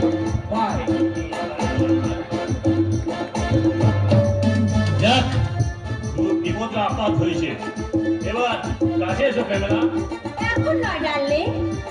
Bye. যাক, খুব বিপদ আপদ হয়েছে। এবার কাছে এসো প্রেমেলা। এখন নয় ডার্লিং,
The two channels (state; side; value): identical; both; correlation 1.00